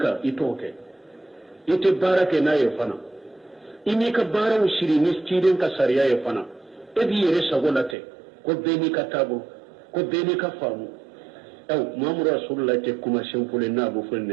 itoke ite barake na yefana imi ka bara ushiri ni kiden ka sariya yefana ebi yere sagolate ko beni ka tabu ko beni ka famu Muhammadu Rasulullah te kuma shempule na bu fo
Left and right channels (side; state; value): left; drops out; at 8.0 s